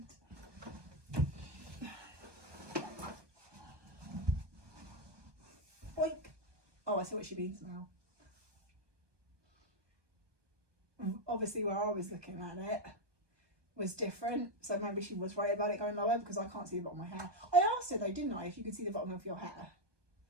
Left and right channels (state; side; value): late; left; 1.2 ms